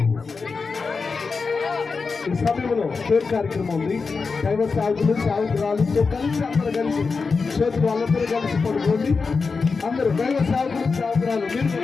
ఈ సమయంలో కేక్ కార్యక్రమం ఉంది. దైవ సాగులు సాగురాలతో కలిసి అందరూ కలిసి చేతులు వాళ్ళందరూ కలిసి పడుకోండి. అందరూ దైవ సాగులు సాగురాలు మీరు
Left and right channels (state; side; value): quieter; right; 4.7 dB